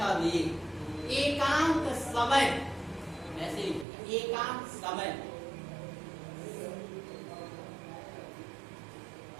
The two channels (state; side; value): drops out; left; at 3.9 s